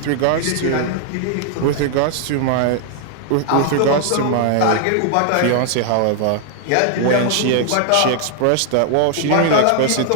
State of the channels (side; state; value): both; different; correlation 0.00